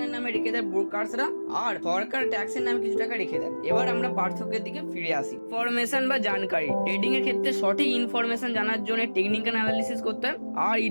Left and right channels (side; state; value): both; inverted; correlation -1.00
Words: নামে রেখে দেয় ব্রোকারসরা, আর সরকার ট্যাক্সের নামে কিছু টাকা রেখে দেয়। এবার আমরা পার্থক্যের দিকে ফিরে আসি। ইনফরমেশন বা জানকারি, ট্রেডিং এর ক্ষেত্রে সঠিক ইনফরমেশন জানার জন্য টেকনিক্যাল অ্যানালিসিস করতে হয়, আর